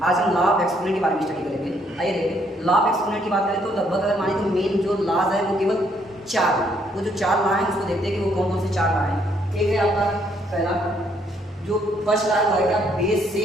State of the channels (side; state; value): both; normal; correlation 0.69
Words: आज हम लॉ ऑफ एक्सपोनेंट के बारे में स्टडी करेंगे। आइए देखिए, लॉ ऑफ एक्सपोनेंट की बात करें तो लगभग अगर माने तो मेन जो लॉज है वो केवल 4 है। वो जो 4 लॉ हैं उसको देखते हैं कि वो कौन कौन से 4 लॉ हैं। एक है आपका पहला, जो फर्स्ट लॉ है क्या, बेस